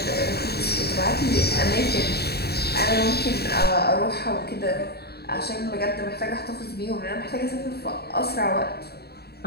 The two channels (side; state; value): right; late; 0.47 ms